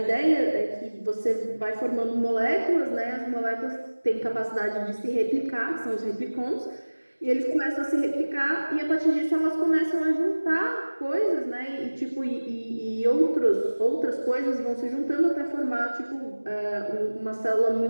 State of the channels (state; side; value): inverted; both; correlation -1.00